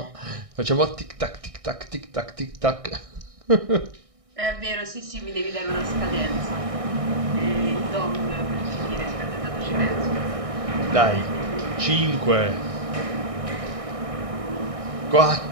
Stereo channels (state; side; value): late; left; 1.6 ms